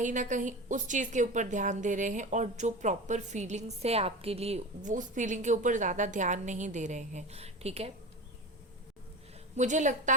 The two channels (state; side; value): normal; both; correlation 0.29